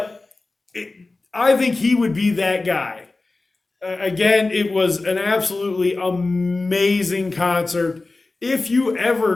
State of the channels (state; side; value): quieter; right; 3.3 dB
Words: I think he would be that guy. Again, it was an absolutely amazing concert. If you